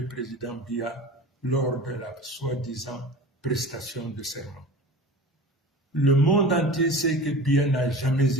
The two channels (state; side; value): normal; both; correlation 0.36